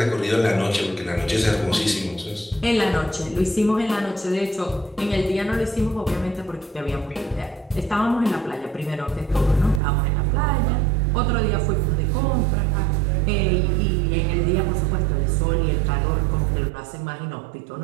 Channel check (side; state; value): left; drops out; at 9.8 s